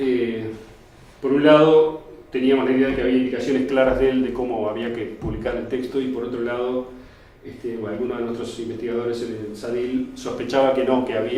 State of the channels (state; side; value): identical; both; correlation 1.00